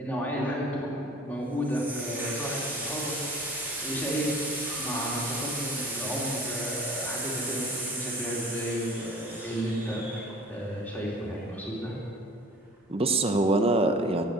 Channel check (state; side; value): normal; both; correlation 0.46